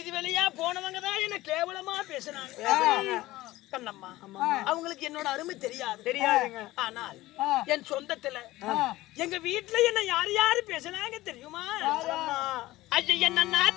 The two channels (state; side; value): quieter; right; 17.6 dB